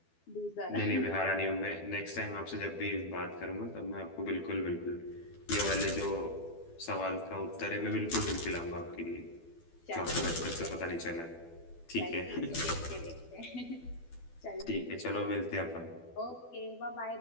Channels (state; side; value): late; right; 12 ms